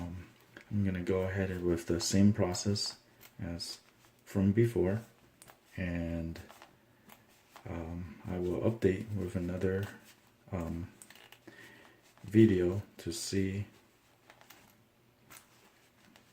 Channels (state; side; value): identical; both; correlation 1.00